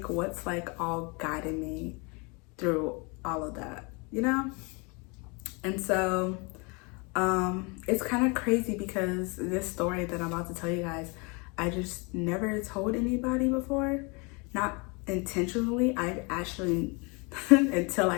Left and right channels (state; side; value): quieter; right; 30.3 dB